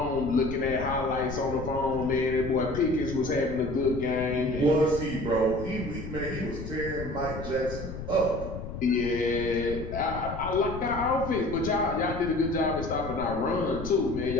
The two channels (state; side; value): noise; left; rumble, 8 dB below the sound